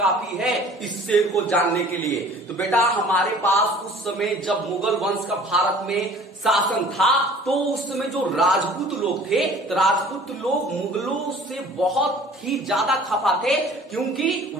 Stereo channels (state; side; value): normal; both; correlation 0.48